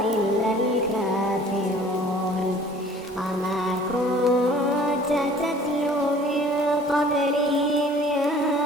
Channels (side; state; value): both; normal; correlation 0.51